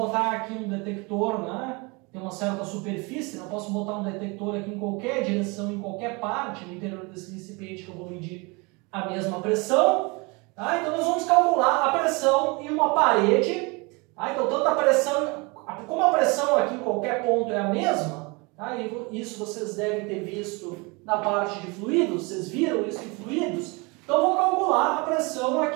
aqui um detector, né, tem uma certa superfície, eu posso botar um detector aqui em qualquer direção, em qualquer parte no interior desse recipiente que eu vou medir a mesma pressão. Então, nós vamos calcular a pressão em uma parede. Então, tanto a pressão, como a pressão aqui em qualquer ponto é a mesma, isso vocês devem ter visto na parte de fluidos, vocês viram isso em fluidos? Então, vou calcular a pressão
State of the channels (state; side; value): quieter; left; 28.0 dB